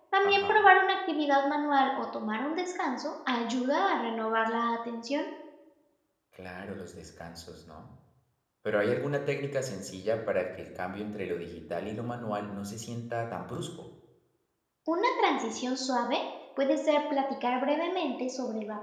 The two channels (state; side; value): identical; both; correlation 1.00